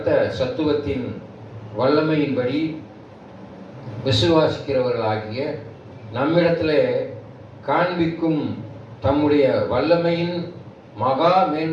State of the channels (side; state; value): both; identical; correlation 1.00